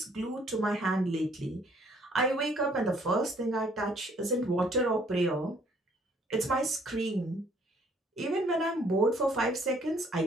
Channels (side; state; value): both; normal; correlation 0.62